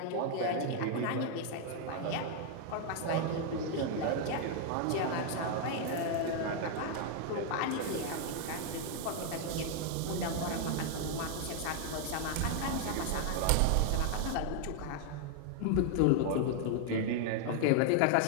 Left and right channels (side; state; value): both; different; correlation 0.00